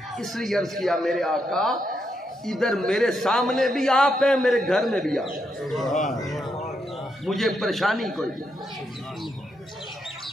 اس لیے عرض کیا میرے آقا ادھر میرے سامنے بھی آپ ہیں, میرے گھر میں بھی آپ, مجھے پریشانی کوئی نہیں.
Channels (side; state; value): both; normal; correlation 0.81